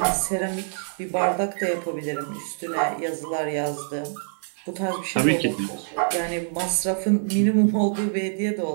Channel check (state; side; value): silent; left; 56 dB below the other